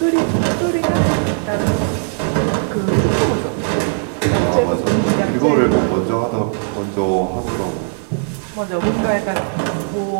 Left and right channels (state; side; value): silent; left; 65 dB below the other